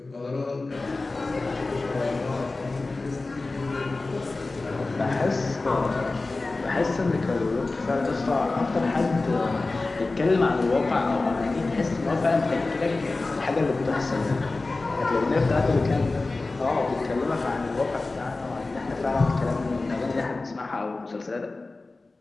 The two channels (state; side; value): quieter; right; 3.4 dB